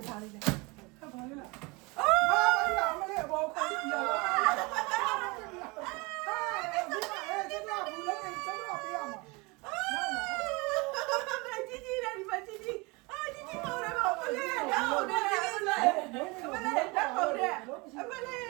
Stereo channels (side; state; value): left; quieter; 26.5 dB